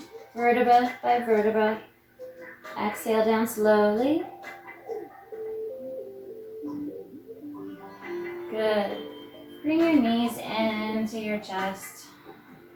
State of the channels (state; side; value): identical; both; correlation 1.00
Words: vertebra by vertebra. Exhale down slowly. Good. Bring your knees into your chest.